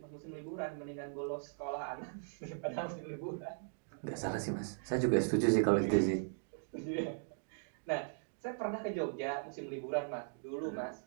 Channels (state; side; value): silent; left; digital silence